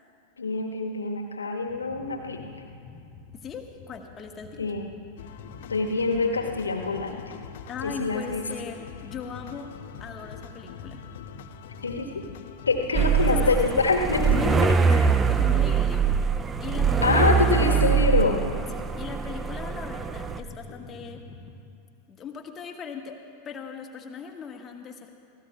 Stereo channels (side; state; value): both; normal; correlation 0.11